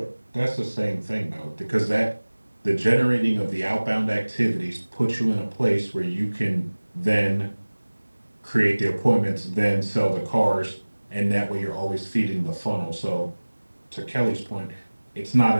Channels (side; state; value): both; inverted; correlation -1.00